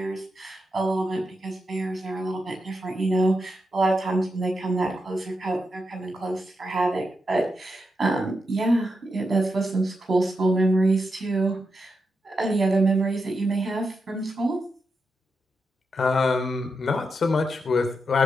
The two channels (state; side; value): normal; both; correlation 0.86